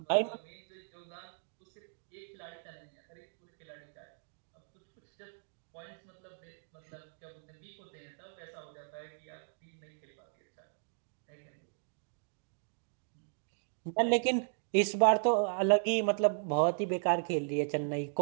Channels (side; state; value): left; silent; digital silence